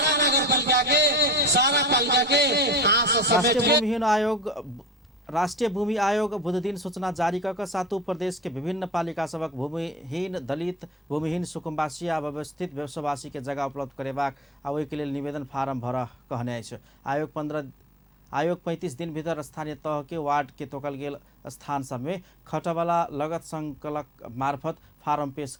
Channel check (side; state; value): both; normal; correlation 0.40